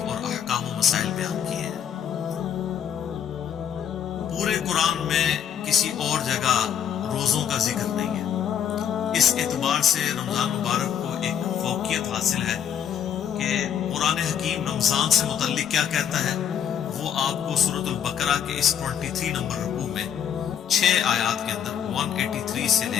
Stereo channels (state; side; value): quieter; right; 8.9 dB